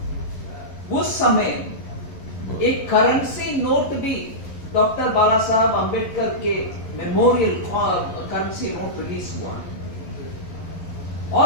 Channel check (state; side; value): late; right; 11 ms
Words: उस समय एक करेंसी नोट भी डॉक्टर बाला साहब अंबेडकर के मेमोरियल करेंसी नोट रिलीज हुआ।